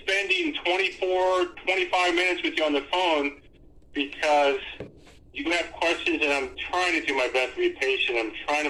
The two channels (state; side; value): identical; both; correlation 1.00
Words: spending 25 minutes with you on the phone, because you have questions, and I'm trying to do my best to be patient. I'm